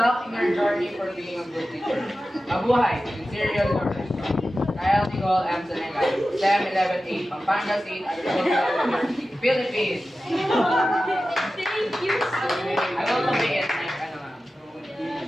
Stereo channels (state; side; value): normal; both; correlation 0.94